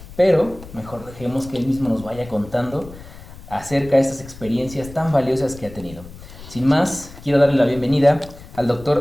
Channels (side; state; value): left; noise; rumble, 17 dB below the sound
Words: pero mejor dejemos que él mismo nos vaya contando acerca de estas experiencias tan valiosas que ha tenido. Sin más, quiero darle la bienvenida al